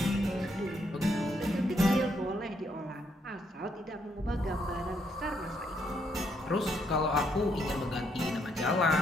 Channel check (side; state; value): both; normal; correlation 0.74